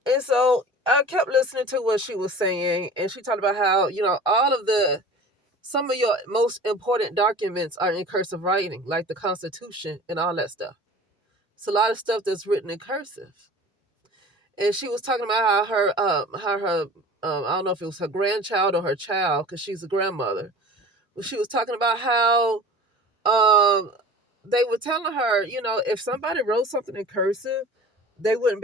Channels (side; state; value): both; normal; correlation 0.40